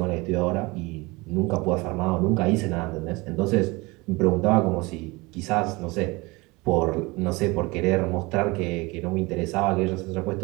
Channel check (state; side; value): quieter; left; 24.1 dB